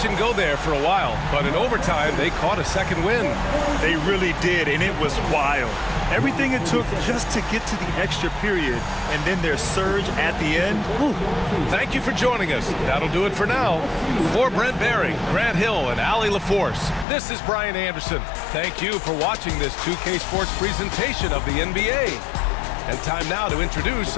and go there for a while, but in overtime, they caught a second win. They really did, and it was wild. Everything it took just to get to the extra period, and then their surge at the end. Whew. Thank you for joining us. That'll do it for now. For Brent Barry, Grant Hill, and Allie LaForce, this is Brian Anderson. Thank you for watching this 2K Sports presentation of the NBA. And time now to introduce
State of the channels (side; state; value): right; drops out; at 17.1 s